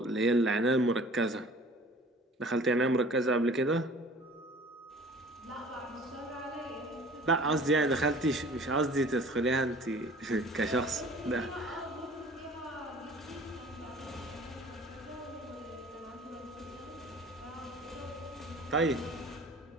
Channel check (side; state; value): both; normal; correlation 0.47